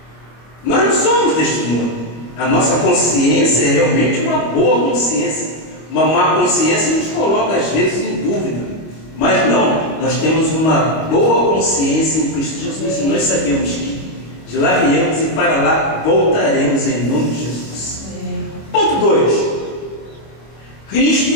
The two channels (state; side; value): late; right; 25 ms